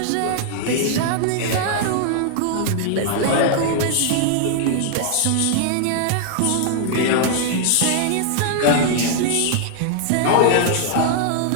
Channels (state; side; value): different; both; correlation 0.00